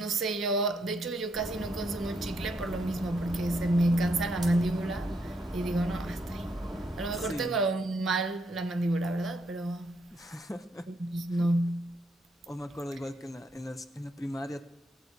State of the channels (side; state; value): both; normal; correlation 0.75